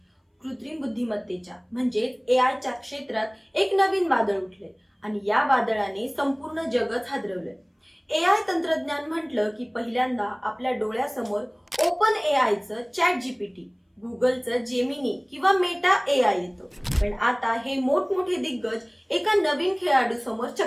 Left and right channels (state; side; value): identical; both; correlation 1.00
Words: कृत्रिम बुद्धिमत्तेच्या म्हणजेच एआयच्या क्षेत्रात एक नवीन वादळ उठले आणि या वादळाने संपूर्ण जगच हादरवले। एआय तंत्रज्ञान म्हटलं की पहिल्यांदा आपल्या डोळ्यासमोर ओपन एआयचं ChatGPT, गुगलचं जेमिनी किंवा मेटा एआय येतो। पण आता हे मोठमोठे दिग्गज एका नवीन खेळाडू समोर